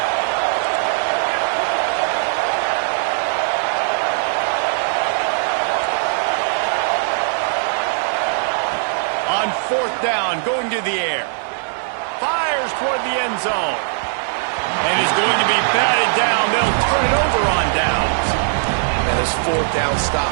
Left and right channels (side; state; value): left; silent; 65 dB below the other